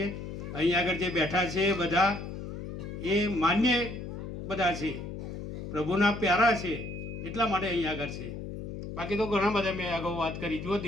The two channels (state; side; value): noise; left; hum, 8 dB below the sound